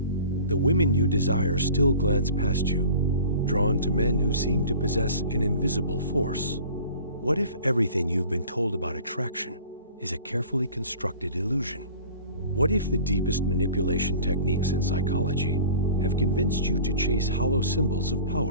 The women you desire still glance past you, drawn to men who seem to possess an invisible force. What if everything you've been told about attraction is a carefully constructed illusion? What if the deepest manipulation techniques in psychology have convinced you to chase hollow symbols of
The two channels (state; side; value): inverted; both; correlation -0.44